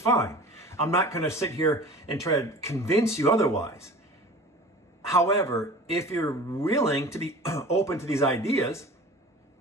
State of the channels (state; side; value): normal; both; correlation 0.39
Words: I'm not going to sit here and try to convince you otherwise. However, if you're willing to be open to these ideas